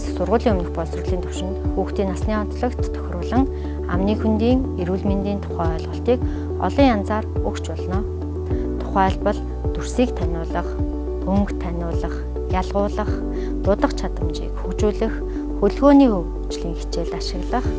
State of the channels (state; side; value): identical; both; correlation 1.00